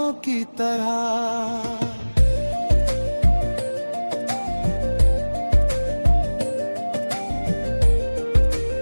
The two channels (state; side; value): inverted; both; correlation -1.00